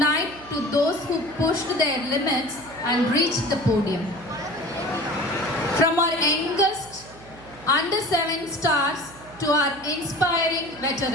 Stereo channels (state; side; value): noise; right; hum, 20 dB below the sound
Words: to those who pushed their limits and reached the podium. From our youngest under 7 stars to our inspiring